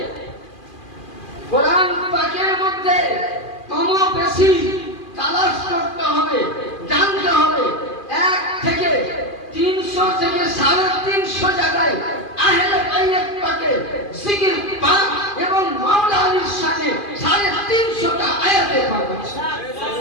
কোরআন পাকের মধ্যে কম বেশি তালাশ করতে হবে, জানতে হবে। 1 থেকে 300 থেকে 350 জায়গায় আহলে বাইত পাকে জিকির পাক এবং মাওলা আলীর শানে 350টা আয়াতে পাক আছে,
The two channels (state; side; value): late; right; 2.4 ms